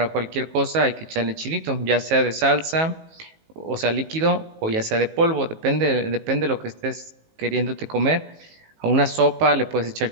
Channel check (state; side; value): late; left; 19 ms